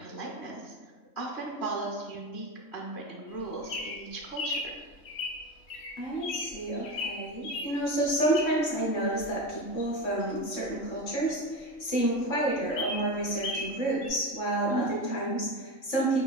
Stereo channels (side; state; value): right; late; 3.6 ms